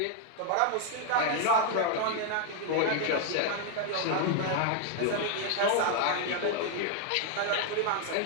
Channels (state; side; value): different; both; correlation 0.00